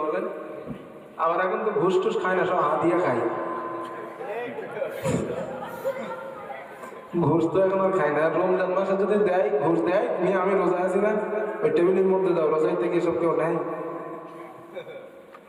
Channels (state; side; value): identical; both; correlation 1.00